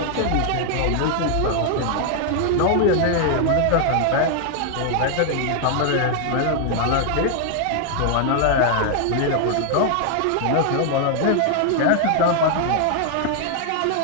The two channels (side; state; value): both; different; correlation 0.00